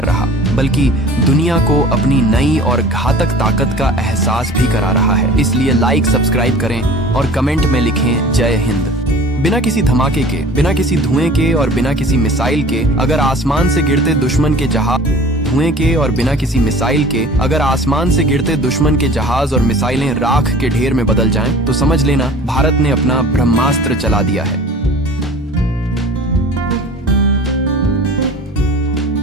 रहा बल्कि दुनिया को अपनी नई और घातक ताकत का एहसास भी करा रहा है। इसलिए लाइक, सब्सक्राइब करें और कमेंट में लिखें जय हिंद। बिना किसी धमाके के, बिना किसी धुएं के और बिना किसी मिसाइल के अगर आसमान से गिरते दुश्मन के जहाज और मिसाइलें राख के ढेर में बदल जाएं, तो समझ लेना भारत ने अपना ब्रह्मास्त्र चला दिया है।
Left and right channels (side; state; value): both; normal; correlation 0.43